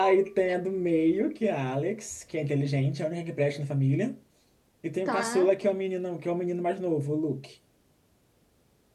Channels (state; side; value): identical; both; correlation 1.00